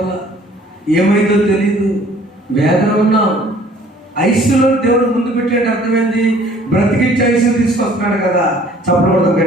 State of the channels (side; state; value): both; normal; correlation 0.54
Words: ఏమైందో తెలియదు, వేదన ఉన్నాం. ఐసీయూలో దేవుడు ముందు పెట్టేట అర్థమైంది, బ్రతికించి ఐసీయూ తీసుకొస్తున్నాడు కదా. చప్పడం